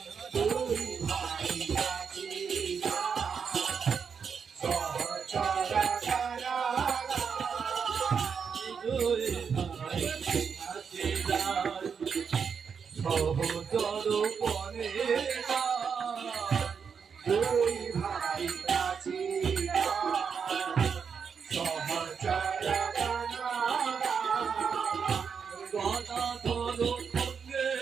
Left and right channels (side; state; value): left; quieter; 6.4 dB